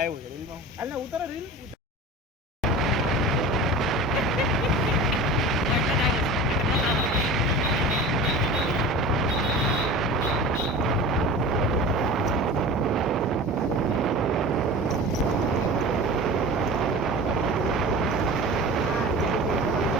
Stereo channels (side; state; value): both; normal; correlation 0.35